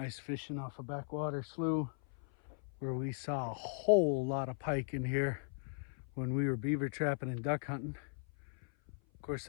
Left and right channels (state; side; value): silent; right; 52 dB below the other